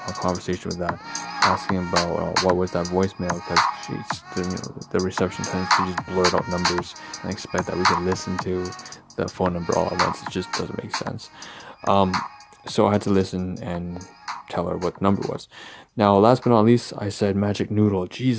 a conversation with that, asking about what was that voicemail, because the reception tends to just blurt out numbers and expect that we can listen to the phone number all at once. It just doesn't make sense. So I had to listen and tell her what the number was. Now, last but not least, I said magic noodle.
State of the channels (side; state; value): both; identical; correlation 1.00